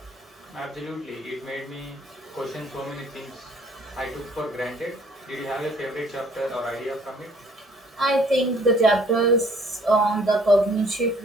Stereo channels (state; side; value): normal; both; correlation 0.58